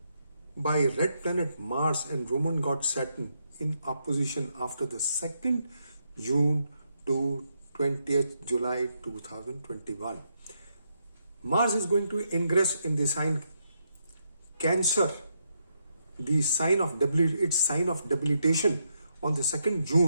by red planet Mars and Roman god Saturn in opposition after the 2nd June to 20th July 2021. Mars is going to ingress in the sign Cancer, the sign of its sign of debilitation on the 2nd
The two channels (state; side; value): inverted; both; correlation -0.79